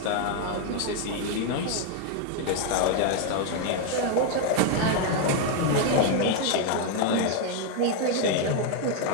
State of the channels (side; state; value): both; different; correlation 0.01